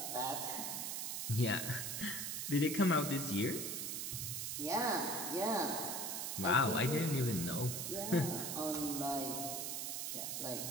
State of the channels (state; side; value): noise; right; hiss, 2 dB below the sound